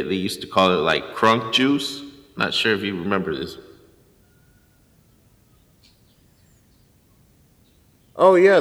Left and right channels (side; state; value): both; identical; correlation 1.00